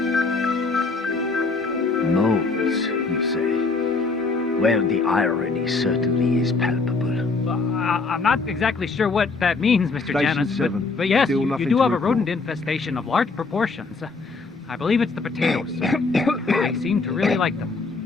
Moles, you say? Well, the irony certainly is palpable. I'm not exactly sure what that means, Mr. Station Janus, 7. but yes, Still you nothing do to have a report. rodent infestation of large proportions. I believe it's the potatoes. They seem to really like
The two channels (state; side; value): quieter; right; 4.0 dB